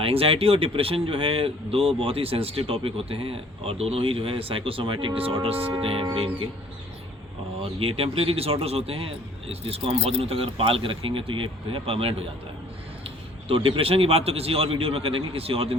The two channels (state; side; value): normal; both; correlation 0.55